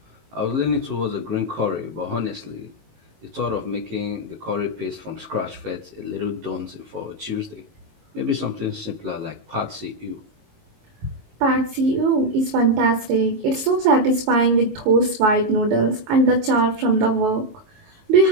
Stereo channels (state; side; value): late; left; 19 ms